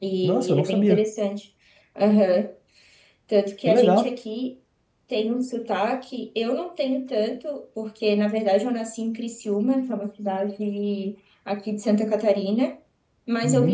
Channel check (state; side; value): identical; both; correlation 1.00